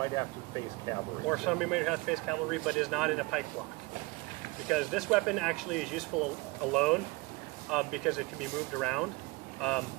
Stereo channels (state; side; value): quieter; left; 24.3 dB